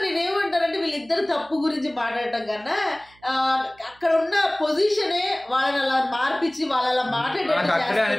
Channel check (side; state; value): right; noise; hum, 30 dB below the sound